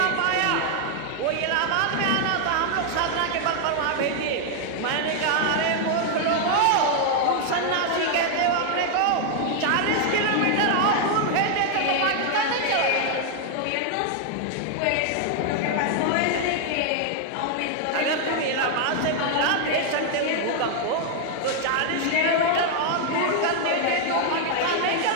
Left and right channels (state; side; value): different; both; correlation 0.00